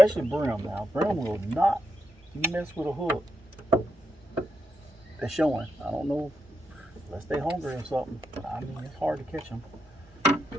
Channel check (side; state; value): both; normal; correlation 0.84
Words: brim now, brim will not mess with a hook. They're showing. I don't know, unless they hungry or something. I mean, it's hard to catch them.